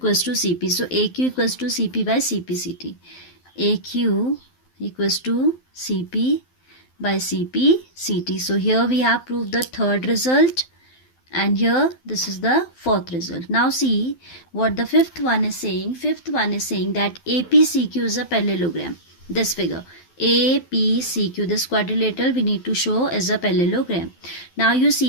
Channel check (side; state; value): right; late; 12 ms